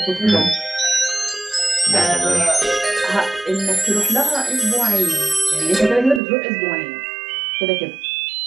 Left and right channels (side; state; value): left; drops out; at 6.2 s